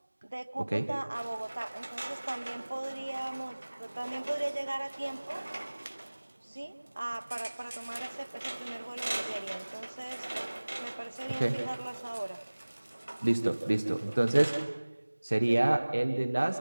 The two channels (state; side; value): inverted; both; correlation -1.00